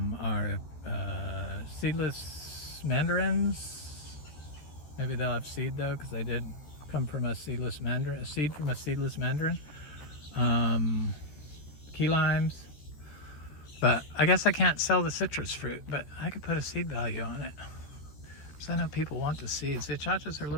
seedless mandarins. Maybe they'll have seed though, because they did come from a seedless mandarin, a seed from a seedless mandarin. Key limes. But I guess I can't sell the citrus fruit, but I could put a seed value on it. So I know people want the seeds. The achachas are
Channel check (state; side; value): late; right; 14 ms